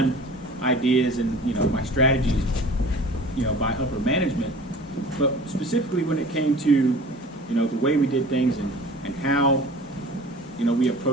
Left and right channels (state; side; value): normal; both; correlation 0.43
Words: ideas and, my strategies, by upper management, but specifically when it came to, the way we did things and how, we